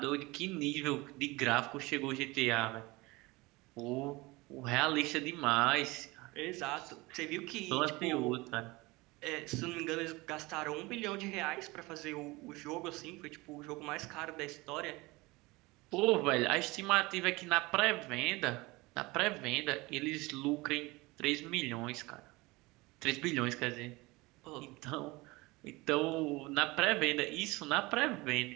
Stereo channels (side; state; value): left; quieter; 22.6 dB